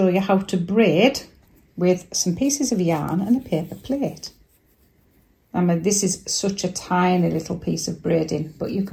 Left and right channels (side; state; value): both; identical; correlation 1.00